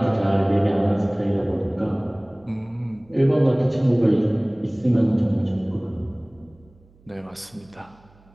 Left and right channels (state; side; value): noise; right; hum, 29 dB below the sound